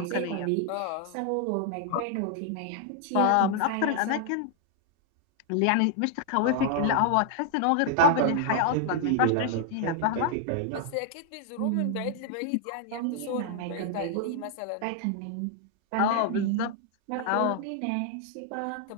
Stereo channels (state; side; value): different; both; correlation 0.00